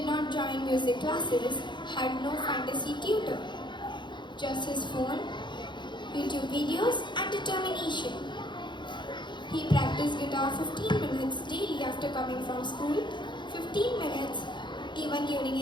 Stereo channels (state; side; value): late; right; 0.22 ms